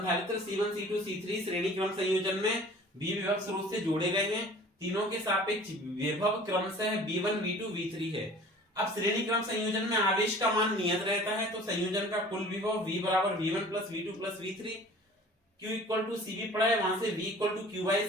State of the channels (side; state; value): both; normal; correlation 0.46